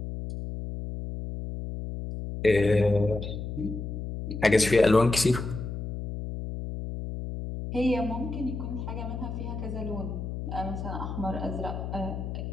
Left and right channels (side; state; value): left; noise; hum, 6 dB below the sound